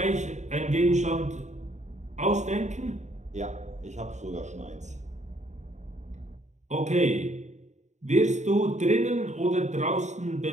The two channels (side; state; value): left; late; 0.34 ms